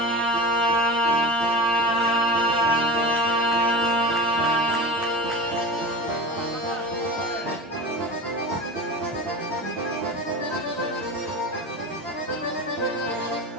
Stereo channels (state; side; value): normal; both; correlation 0.30